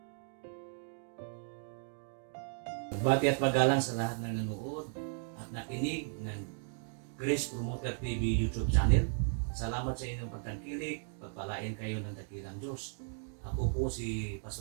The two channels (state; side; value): silent; left; 54 dB below the other